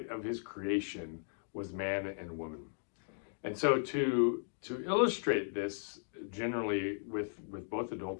of his creation was man and woman. And so to illustrate this generally with both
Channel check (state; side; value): silent; right; digital silence